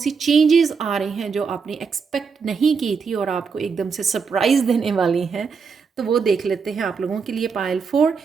चेंजेस आ रही हैं जो आपने एक्सपेक्ट नहीं की थी और आपको एकदम से सरप्राइज देने वाली हैं। तो वो देख लेते हैं आप लोगों के लिए। पायल 4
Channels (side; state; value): left; quieter; 5.6 dB